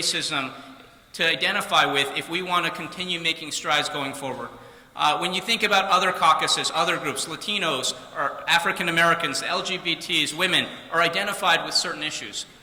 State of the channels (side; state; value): both; identical; correlation 1.00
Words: to identify with if we want to continue making strides going forward. When you think about other caucuses, other groups, Latinos, or African Americans, LGBTs, women, are identified with certain issues.